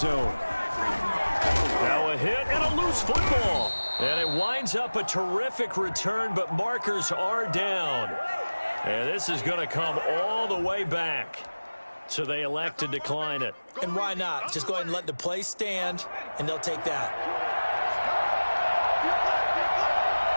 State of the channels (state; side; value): inverted; both; correlation -1.00